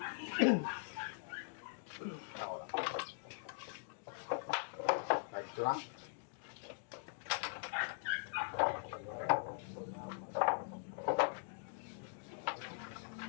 Ako lang. Kahit ito lang.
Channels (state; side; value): silent; right; digital silence